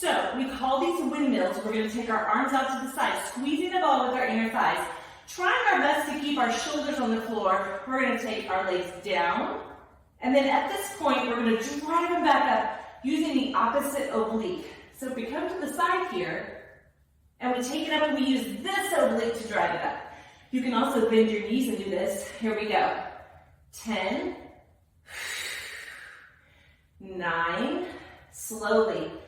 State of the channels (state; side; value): identical; both; correlation 1.00